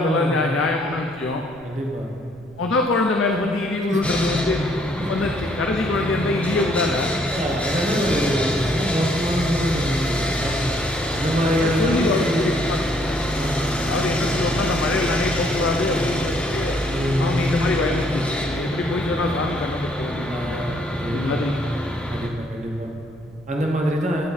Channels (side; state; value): right; noise; rumble, 22 dB below the sound